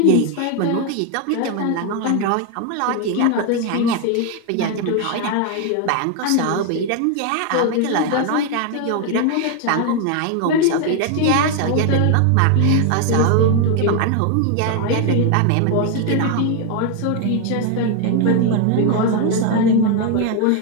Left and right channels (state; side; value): different; both; correlation 0.01